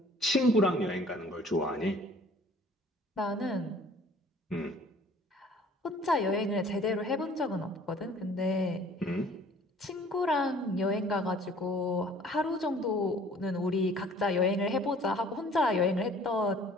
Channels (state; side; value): normal; both; correlation 0.52